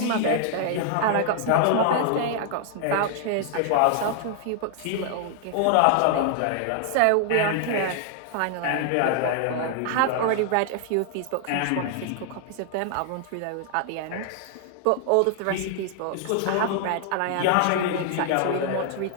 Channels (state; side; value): different; both; correlation 0.00